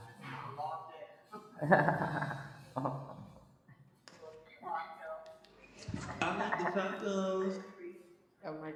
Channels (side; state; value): both; identical; correlation 1.00